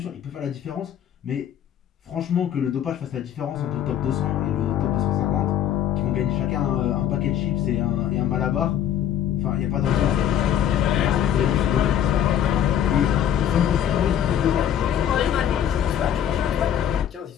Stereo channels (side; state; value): right; quieter; 9.9 dB